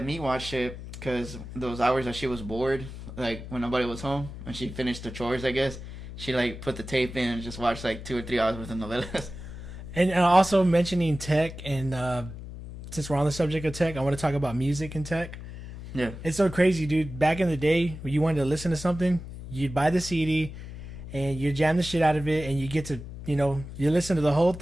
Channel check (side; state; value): left; noise; hum, 11 dB below the sound